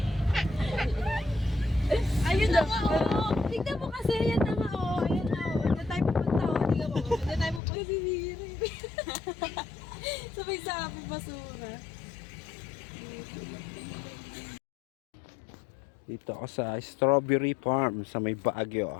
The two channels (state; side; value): drops out; right; at 7.6 s